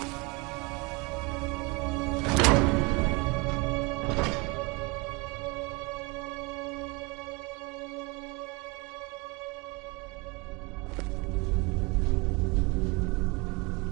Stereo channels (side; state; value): left; quieter; 27.5 dB